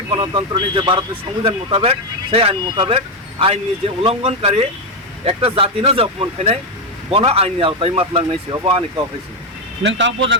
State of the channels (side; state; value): both; normal; correlation 0.05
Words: গণতন্ত্র নি যে ভারতের সংবিধান মোতাবেক সেই আইন মোতাবেক আইনি যে উল্লঙ্ঘনকারী একটা জাতি না যে অপমান খাই বন আইনি আওতায় মাতলাংনাইছে অব আনি কাউ খাইছে নং তাও